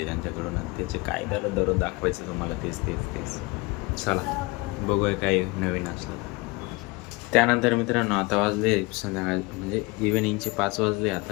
त्यांच्याकडून. त्याचे काय झालं दररोज दाखवायचं तुम्हाला तेच. चला बघूया काय नवीन असलं. त्यानंतर मित्रांनो आता वाजले संध्याकाळ म्हणजे इव्हिनिंगचे 5 वाजले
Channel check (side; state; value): right; quieter; 24.7 dB